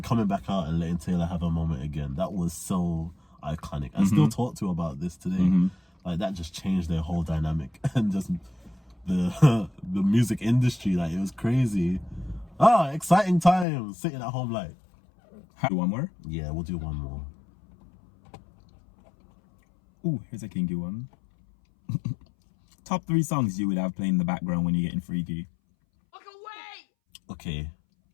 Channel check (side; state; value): right; drops out; at 13.7 s